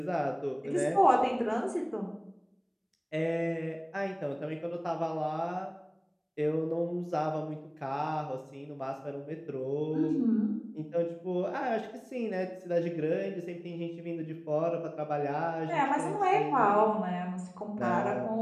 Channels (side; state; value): both; identical; correlation 1.00